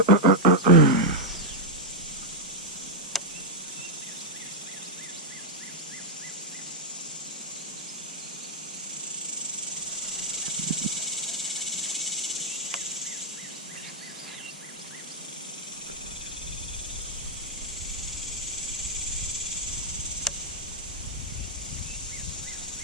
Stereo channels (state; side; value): normal; both; correlation -0.03